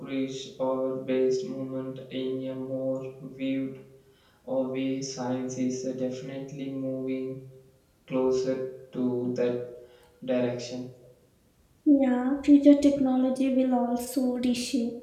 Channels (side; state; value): both; identical; correlation 1.00